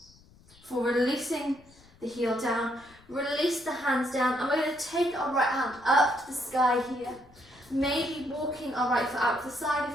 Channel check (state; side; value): noise; left; rumble, 26 dB below the sound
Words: For releasing the heel down, release the hands down, and we're going to take our right hand up to the sky here. Maybe walking our right foot out to the side